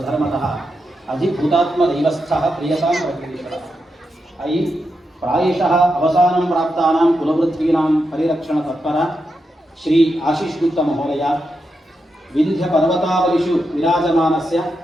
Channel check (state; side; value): normal; both; correlation 0.86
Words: अधिभूतात्मदैवस्थः प्रियतां प्रकृतिशतः। अयि प्रायशः अवसानं प्राप्तानां कुलवृत्तीनां परिरक्षणतत्पर श्री आशीष गुप्ता महोदय विन्ध्यपर्वतावलिषु विराजमानस्य